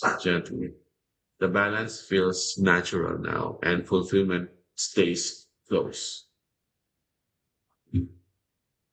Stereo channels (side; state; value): both; identical; correlation 1.00